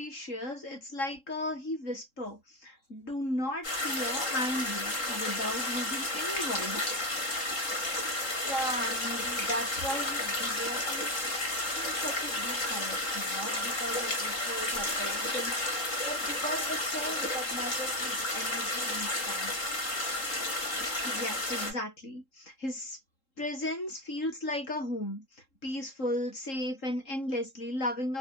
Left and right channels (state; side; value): late; right; 3.7 ms